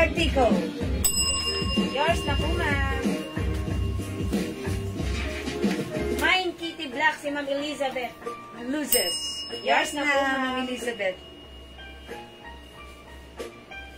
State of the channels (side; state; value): both; identical; correlation 1.00